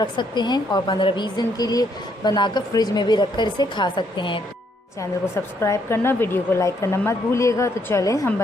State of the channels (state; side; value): normal; both; correlation 0.71